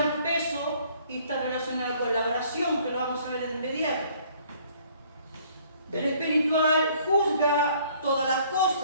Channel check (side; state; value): both; inverted; correlation -0.59